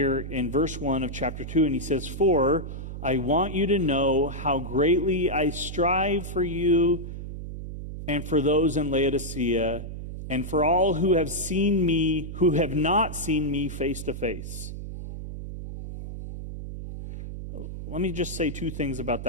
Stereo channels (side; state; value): right; noise; hum, 8 dB below the sound